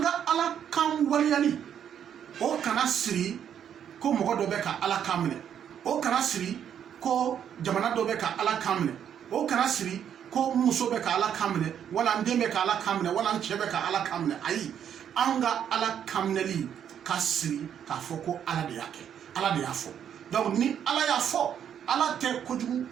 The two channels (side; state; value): left; quieter; 9.0 dB